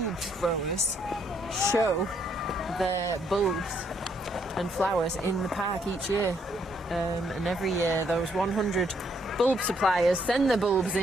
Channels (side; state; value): both; normal; correlation 0.71